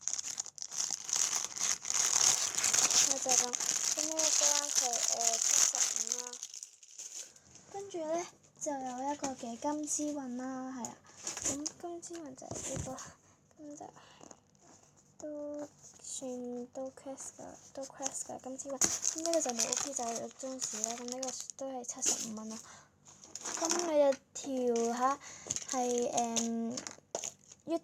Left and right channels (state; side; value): identical; both; correlation 1.00